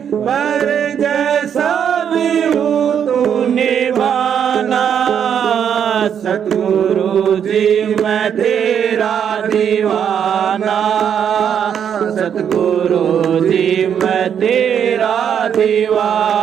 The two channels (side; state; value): left; quieter; 8.4 dB